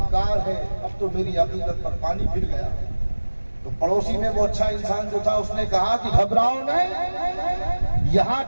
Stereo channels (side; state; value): both; inverted; correlation -1.00